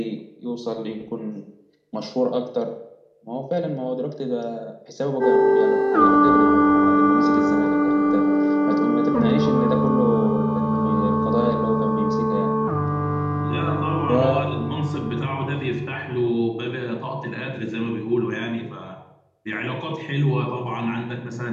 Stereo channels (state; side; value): identical; both; correlation 1.00